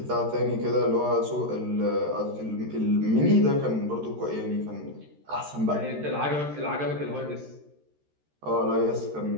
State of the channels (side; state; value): left; late; 13 ms